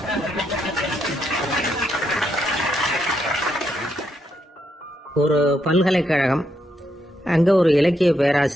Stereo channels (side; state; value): both; normal; correlation 0.79